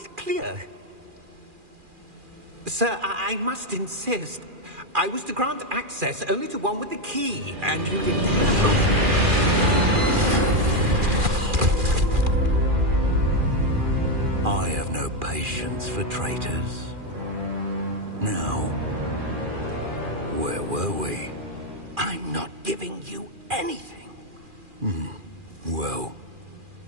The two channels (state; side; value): late; left; 2.4 ms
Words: clear. Sir, I must insist. I was to grant access only to one with the key, and you didn't have I have no patience for traitors. Now, where were we? I'm not giving you anything. Well,